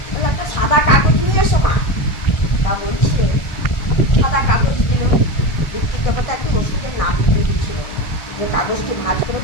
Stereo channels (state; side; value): late; right; 1.4 ms